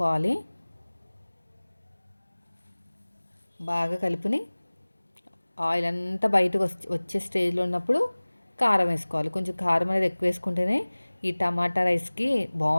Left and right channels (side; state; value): both; inverted; correlation -1.00